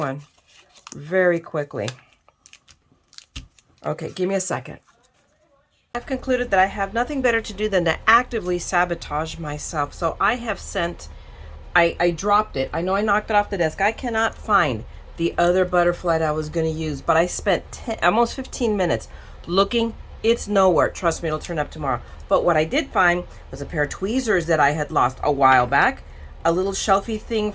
very quickly. Okay, give me a second. I've concluded that I have nothing better to do than to actively sabotage myself. So I have sent, I dropped it. I know I knocked it off the desk. I cannot find the other butterfly that I was going to use, but I spent almost 15 minutes looking. It's nowhere. Trust me, it'll turn up tomorrow. But what I did find was a pair of tweezers that I had lost a while back, a little shelfie thing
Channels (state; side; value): identical; both; correlation 1.00